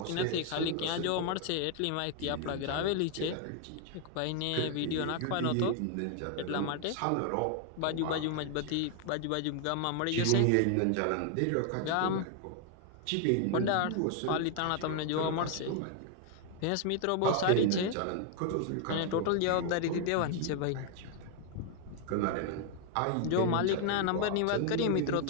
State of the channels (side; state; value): both; different; correlation 0.00